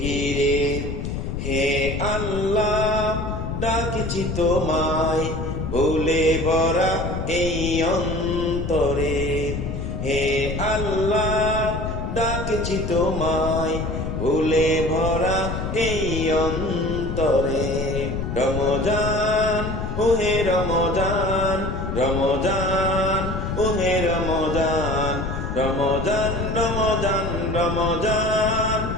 ঘিরে। হে আল্লাহ ডাকছি তোমায়, ভুলে ভরা এই অন্তরে। হে আল্লাহ ডাকছি তোমায়, ভুলে ভরা এই অন্তরে। রমজান ওহে রমজান রমজান ওহে রমজান রমজান রমজান রমজান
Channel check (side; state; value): left; noise; rumble, 4 dB below the sound